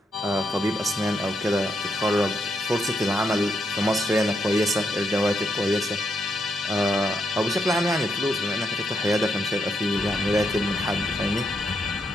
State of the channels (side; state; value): both; normal; correlation 0.79